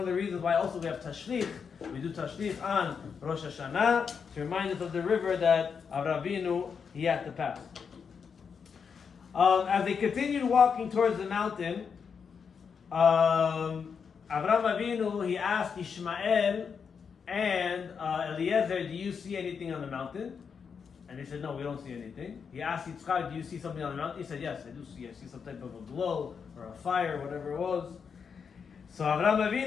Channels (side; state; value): right; quieter; 6.3 dB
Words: of the reasons why also we have Tashlich. We do Tashlich on Rosh Hashanah, to remind us of the river that Avraham Avinu, he had to pass. As they continued walking towards the mountain, Avraham Avinu, he asked Ishmael and Eliezer, do you see anything on the mountain? And they said, no, we don't see anything. He asked Yitzchak, do you see something on the mountain? He said, yes, I do see. I see some type of a glow or a fire, whatever it was. So Avraham